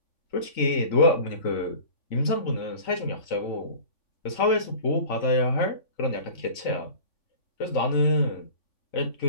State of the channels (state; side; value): late; right; 3.9 ms